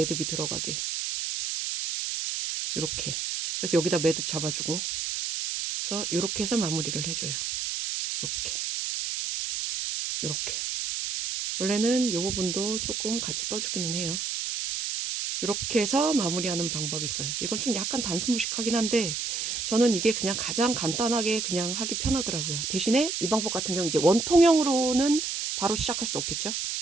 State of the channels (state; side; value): noise; right; hiss, 2 dB below the sound